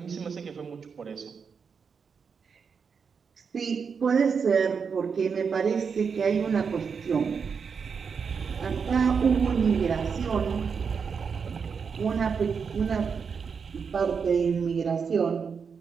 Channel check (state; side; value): quieter; left; 6.0 dB